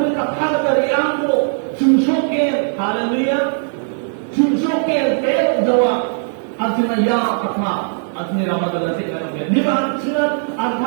ka kagari ako susukin hallelujah susukin pero jawa at sinaya katma at niramadan na sinaya di ba sila at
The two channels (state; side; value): silent; left; 64 dB below the other